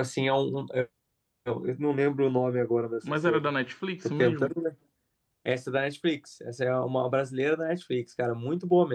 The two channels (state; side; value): identical; both; correlation 1.00